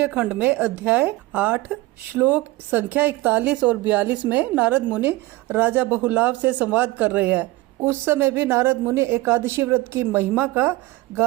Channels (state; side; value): quieter; left; 19.1 dB